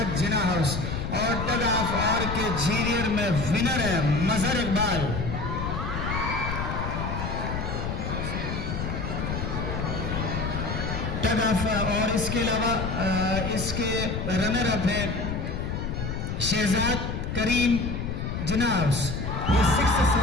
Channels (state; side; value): noise; left; rumble, 3 dB below the sound